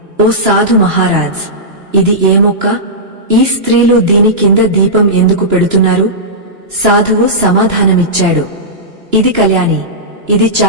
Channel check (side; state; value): left; late; 2.9 ms